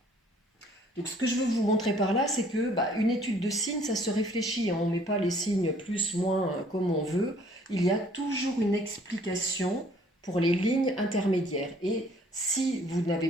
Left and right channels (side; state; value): both; normal; correlation 0.58